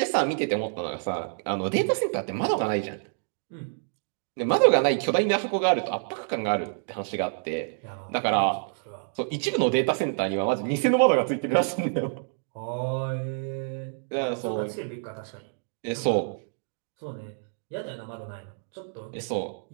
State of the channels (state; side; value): silent; left; digital silence